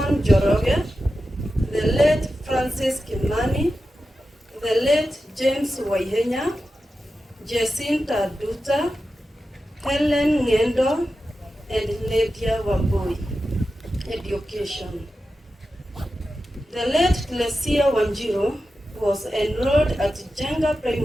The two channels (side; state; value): both; normal; correlation 0.92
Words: Joroge, the late Francis Kimani, the late James Waihenya, Jacinta Duta, Helen Ngendo, and Lydia Wambui. Education. The late Teresia Wanjiru was enrolled at Jenga